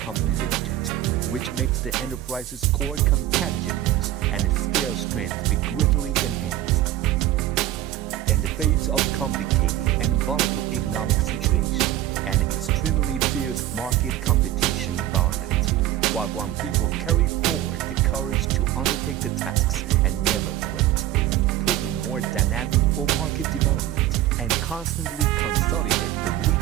Limited, which makes the enterprise's core competitiveness and its scale strength be greatly enhanced. In the face of complicated and volatile economic situation and extremely fierce market competition environment, Huaguang people carry forward the courage to undertake the tasks and never quit, putting more dynamic for market development and constantly consolidate the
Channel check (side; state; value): left; quieter; 13.5 dB